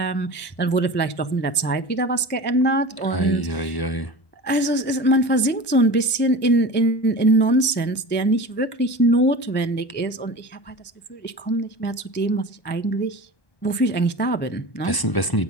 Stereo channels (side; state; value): right; late; 1.1 ms